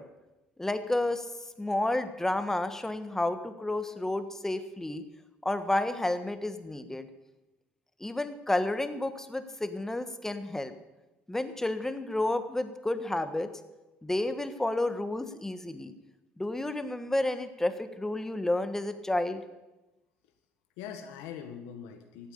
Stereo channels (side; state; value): both; normal; correlation 0.93